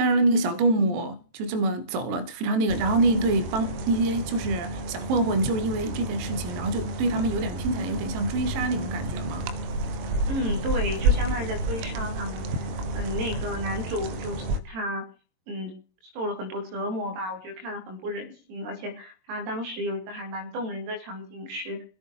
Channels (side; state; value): left; late; 23 ms